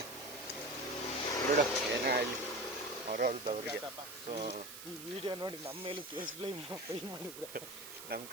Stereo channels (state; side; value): noise; right; hiss, 11 dB below the sound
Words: ಏನೇ ಆಗಲಿ ಅವ್ರವ್ರದವ್ರಿಗೆ. ಸೊ ಈ ವಿಡಿಯೋ ನೋಡಿ ನಮ್ಮ ಮೇಲೂ ಕೇಸ್ ಪೇ ಮಾಡಿದ್ರೆ ನಮ್ಮ